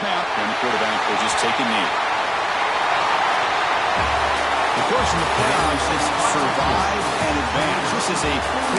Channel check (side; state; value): both; identical; correlation 1.00